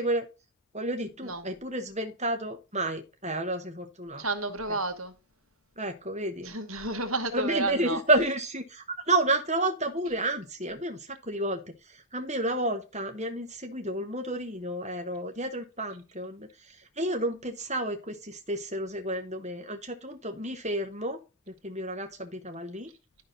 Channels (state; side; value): normal; both; correlation -0.11